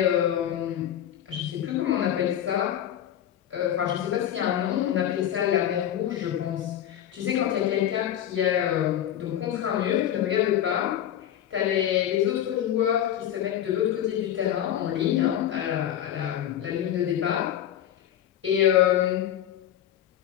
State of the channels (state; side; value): quieter; right; 10.8 dB